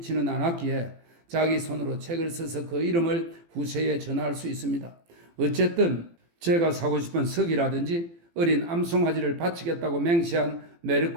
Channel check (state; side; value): late; left; 18 ms